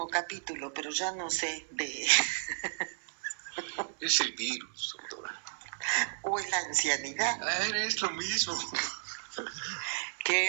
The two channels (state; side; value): silent; left; 56 dB below the other